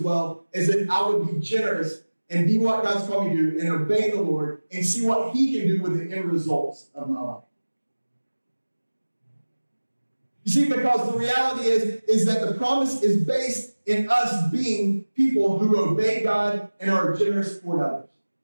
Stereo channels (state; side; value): inverted; both; correlation -1.00